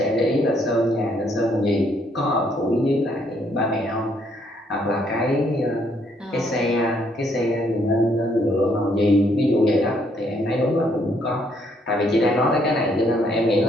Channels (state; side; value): normal; both; correlation 0.69